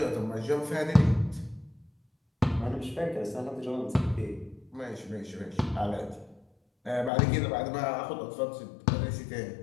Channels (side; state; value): right; drops out; at 7.1 s